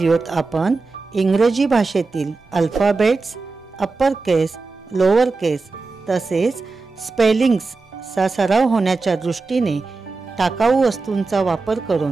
आपण इंग्रजी भाषेतील अल्फाबेट्स, अप्पर केस, लोअर केस तसेच स्पेलिंग्सचा सराव होण्याच्या दृष्टीने टाकाऊ वस्तूंचा वापर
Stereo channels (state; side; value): quieter; left; 3.9 dB